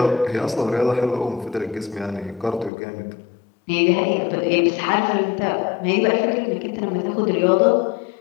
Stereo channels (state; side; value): drops out; right; at 2.7 s